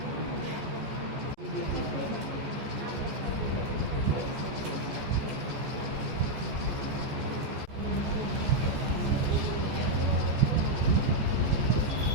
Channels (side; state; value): left; late; 14 ms